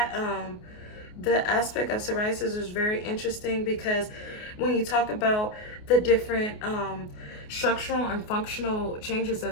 the aspect of psoriasis is very interesting, because when you talk about the different structural and functional changes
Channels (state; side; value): late; right; 28 ms